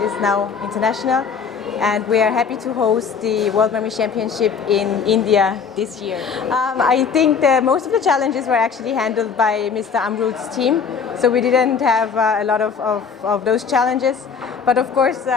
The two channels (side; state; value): right; quieter; 6.1 dB